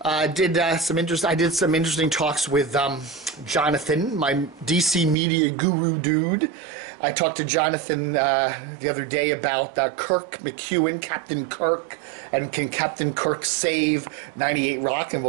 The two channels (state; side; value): drops out; left; at 5.2 s